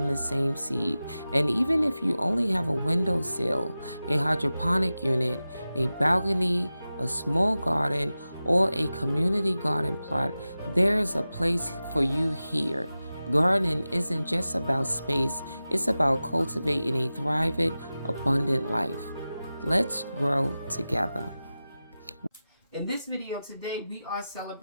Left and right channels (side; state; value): both; inverted; correlation -0.95